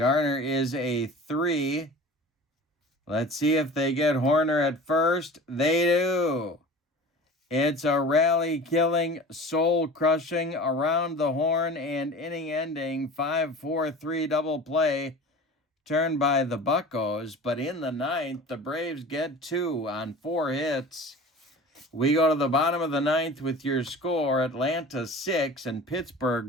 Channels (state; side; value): normal; both; correlation 0.38